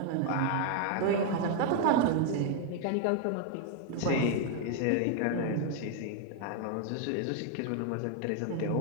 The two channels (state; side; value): different; both; correlation 0.00